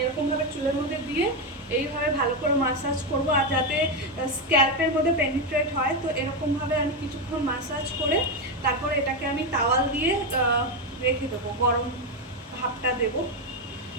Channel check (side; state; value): both; normal; correlation 0.08